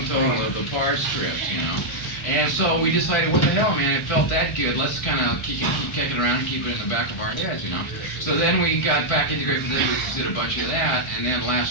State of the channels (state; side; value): late; right; 1.4 ms